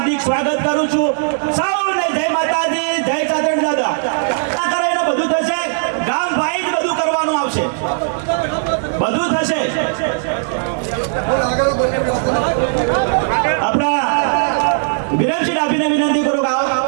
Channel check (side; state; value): left; silent; digital silence